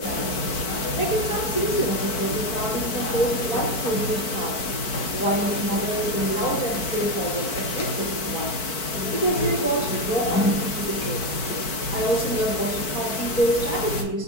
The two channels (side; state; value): right; late; 4.5 ms